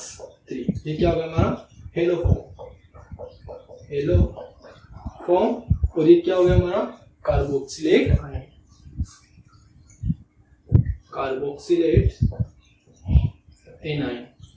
ये क्या होगा हमारा? हेलोफॉर्म। हेलोफॉर्म। और ये क्या हो गया हमारा? Carboxylate ion, carboxylate A9.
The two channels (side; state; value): both; identical; correlation 1.00